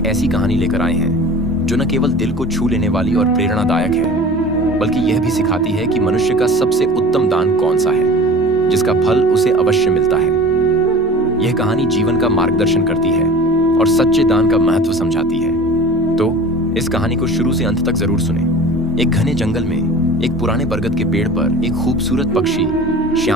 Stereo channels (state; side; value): normal; both; correlation 0.39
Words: ऐसी कहानी लेकर आए हैं जो न केवल दिल को छू लेने वाली और प्रेरणादायक है, बल्कि यह भी सिखाती है कि मनुष्य का सबसे उत्तम दान कौन सा है, जिसका फल उसे अवश्य मिलता है। यह कहानी जीवन का मार्गदर्शन करती है और सच्चे दान का महत्व समझाती है। तो इस कहानी को शुरू से अंत तक जरूर सुने। एक घने जंगल में एक पुराने बरगद के पेड़ पर एक खूबसूरत पक्षी